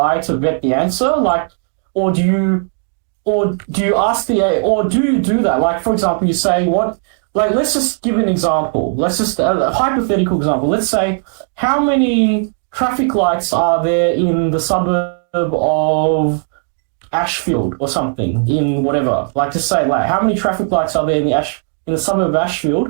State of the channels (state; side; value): silent; left; 69 dB below the other